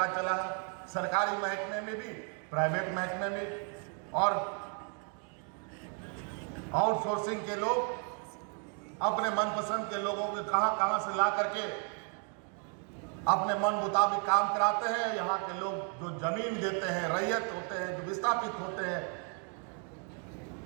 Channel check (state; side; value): quieter; left; 39.1 dB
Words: चला है, सरकारी महकमे में भी, प्राइवेट महकमे में, और आउटसोर्सिंग के लोग अपने मनपसंद के लोगों को कहां से ला करके अपने मन मुताबिक काम कराते हैं। यहाँ के लोग जो जमीन देते हैं, रैयत होते हैं, जो विस्थापित होते हैं,